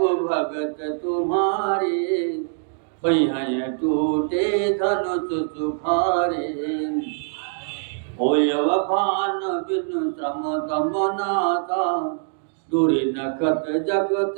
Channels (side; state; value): left; silent; digital silence